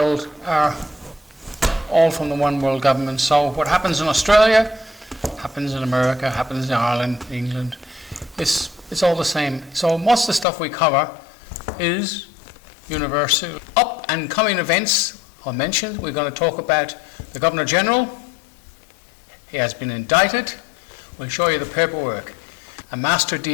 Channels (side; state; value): right; drops out; at 10.5 s